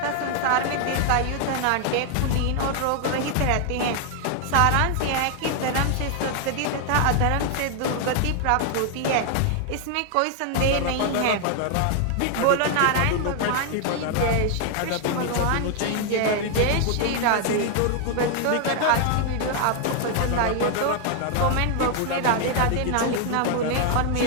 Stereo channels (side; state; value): both; different; correlation 0.00